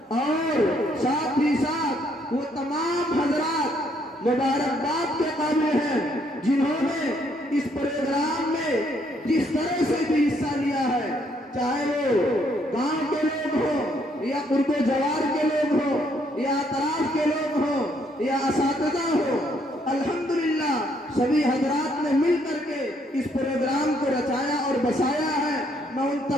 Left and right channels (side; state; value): both; normal; correlation 0.70